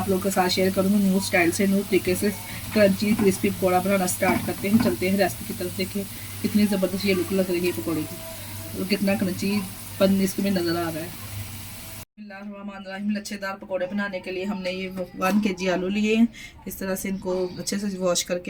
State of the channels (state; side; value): identical; both; correlation 1.00